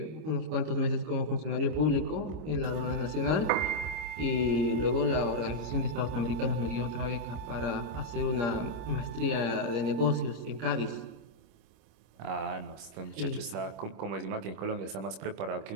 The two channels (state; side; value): late; left; 26 ms